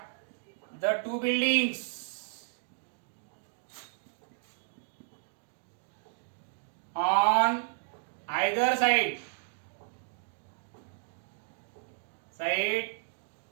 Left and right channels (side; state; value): left; silent; digital silence